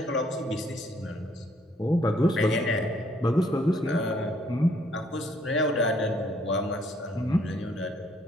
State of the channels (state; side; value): normal; both; correlation 0.66